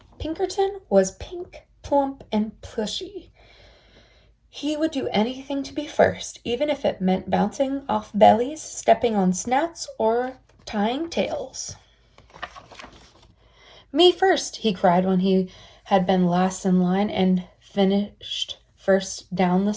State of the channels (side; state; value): both; identical; correlation 1.00